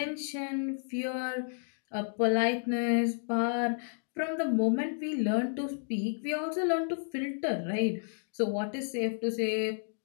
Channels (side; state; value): right; silent; digital silence